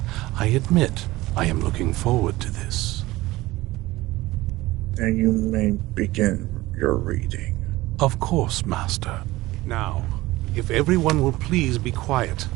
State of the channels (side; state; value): left; quieter; 18.7 dB